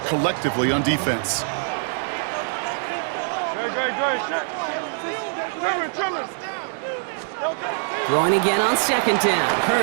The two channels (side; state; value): left; silent; digital silence